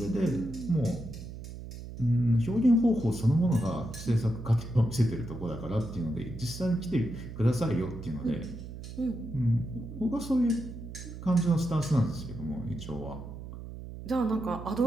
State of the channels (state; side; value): noise; right; hum, 11 dB below the sound